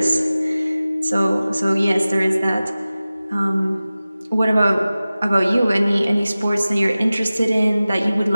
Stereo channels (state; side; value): inverted; both; correlation -0.97